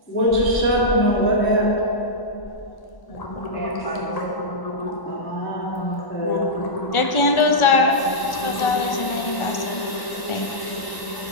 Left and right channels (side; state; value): right; late; 1.1 ms